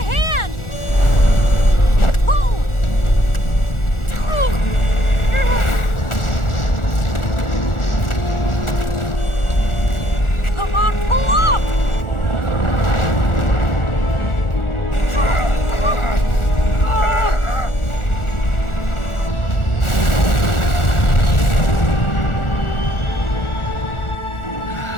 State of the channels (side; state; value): right; late; 1.4 ms